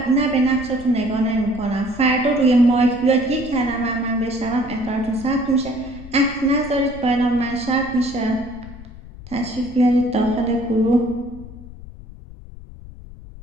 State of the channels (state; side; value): noise; left; rumble, 16 dB below the sound